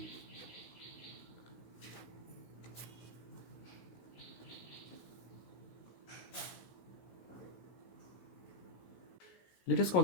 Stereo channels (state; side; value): late; right; 16 ms